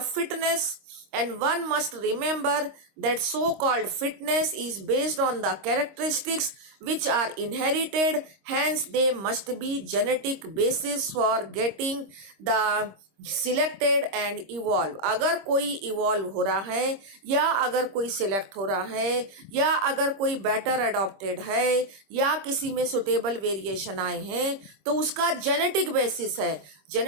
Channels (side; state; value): left; late; 26 ms